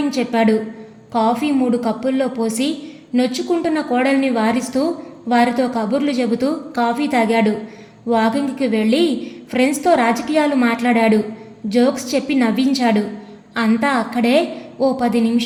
చెప్పాడు. కాఫీ 3 కప్పుల్లో పోసి నొచ్చుకుంటున్న కోడల్ని వారిస్తూ వారితో కబుర్లు చెబుతూ కాఫీ తాగాడు. వాకింగ్కి వెళ్ళి ఫ్రెండ్స్తో రాజకీయాలు మాట్లాడాడు. జోక్స్ చెప్పి నవ్వించాడు. అంతా అక్కడే ఓ 10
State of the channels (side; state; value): both; identical; correlation 1.00